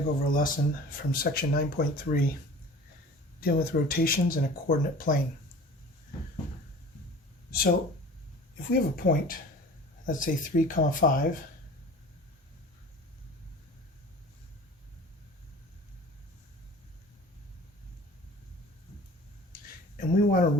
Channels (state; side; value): normal; both; correlation 0.42